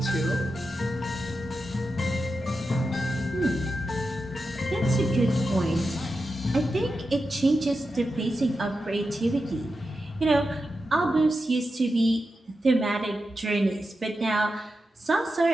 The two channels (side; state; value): both; normal; correlation 0.89